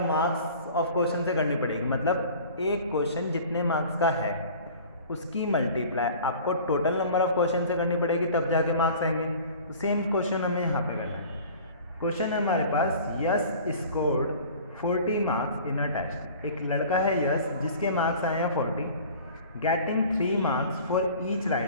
मार्क्स ऑफ क्वेश्चन से करनी पड़ेगी। मतलब एक क्वेश्चन जितने मार्क्स का है उसकी मल्टीप्लाई आपको टोटल नंबर ऑफ क्वेश्चन से करनी पड़ेगी, तब जाके मार्क्स आएंगे। तो सेम क्वेश्चन हमें यहाँ पे करना है। क्वेश्चन है हमारे पास, Yash scored 40 marks in a test. एक लड़का है यस जिसके मार्क्स आए हैं 40, getting 3 marks for each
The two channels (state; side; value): inverted; both; correlation -0.44